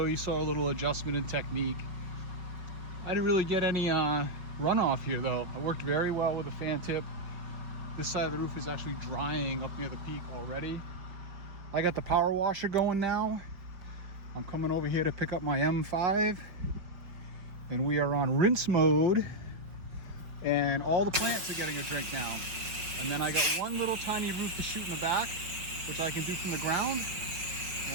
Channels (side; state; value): left; late; 5.3 ms